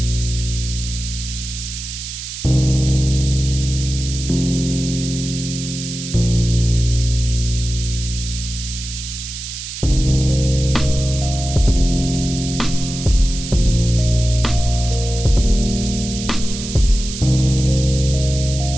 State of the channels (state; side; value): noise; right; hiss, 9 dB below the sound